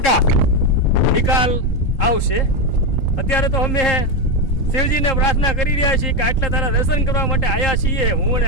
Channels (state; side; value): late; right; 3.8 ms